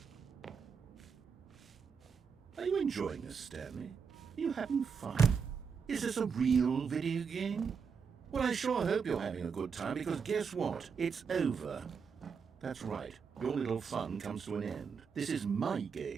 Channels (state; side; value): quieter; left; 6.1 dB